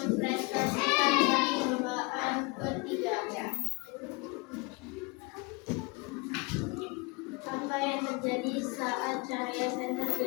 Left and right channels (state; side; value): quieter; right; 28.0 dB